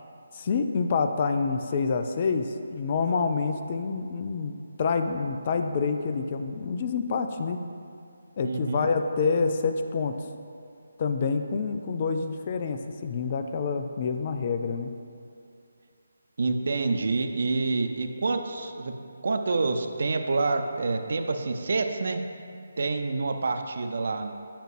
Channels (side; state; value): both; inverted; correlation -0.78